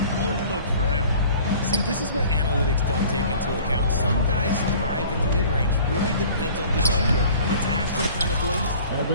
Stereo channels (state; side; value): inverted; both; correlation -0.47